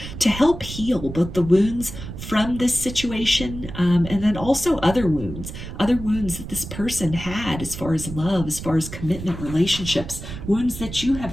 to help heal both the wounds from this situation, and then also other wounds that this person had as far as love, as far as commitment, relationships, wounds that you have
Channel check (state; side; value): noise; right; rumble, 10 dB below the sound